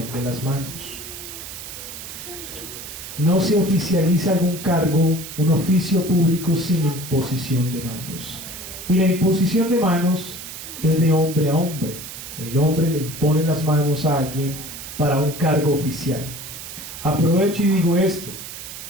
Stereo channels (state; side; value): noise; right; hiss, 11 dB below the sound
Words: de las manos. No se oficializa algún cargo, un oficio público sin imposición de manos. Y la imposición de manos es de hombre a hombre. El hombre le impone las manos a alguien para un cargo oficial. Aprovecho y digo esto.